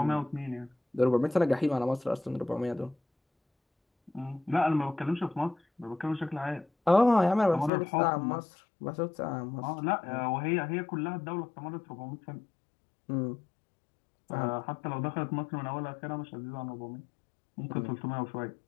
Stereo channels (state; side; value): drops out; right; at 7.7 s